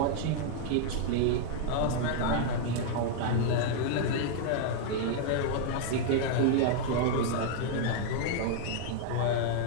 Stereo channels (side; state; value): both; different; correlation 0.00